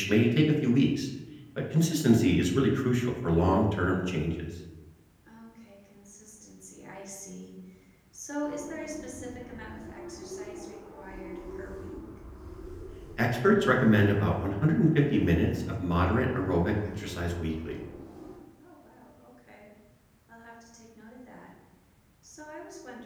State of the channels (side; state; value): both; identical; correlation 1.00